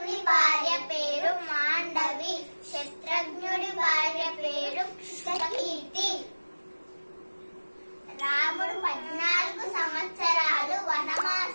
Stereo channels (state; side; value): inverted; both; correlation -1.00